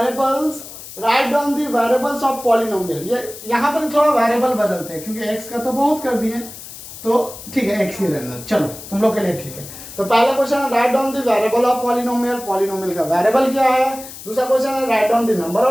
right on the variables of polynomial. ये यहाँ पर थोड़ा वेरिएबल बदलते हैं क्योंकि x का तो बहुत कर दिए, तो ठीक है x ही रहना, चलो तुम लोग के लिए ठीक है। तो पहला क्वेश्चन है right on the variable of polynomial, polynomial का वेरिएबल क्या है। दूसरा क्वेश्चन है right on the number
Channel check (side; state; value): left; noise; hiss, 14 dB below the sound